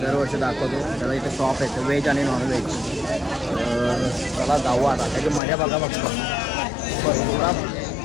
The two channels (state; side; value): drops out; right; at 5.4 s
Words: दाखवतो. त्याला इथे शॉप आहे व्हेज आणि नॉनव्हेज. चला जाऊ आता, त्याची मजा बघा बघतो.